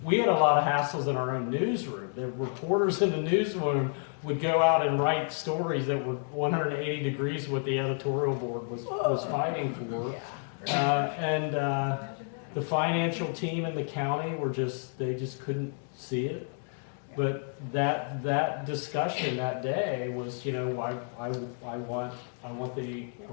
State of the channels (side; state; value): right; silent; 58 dB below the other